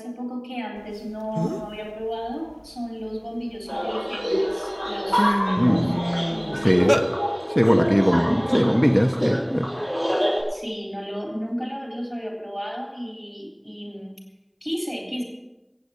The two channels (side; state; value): both; identical; correlation 1.00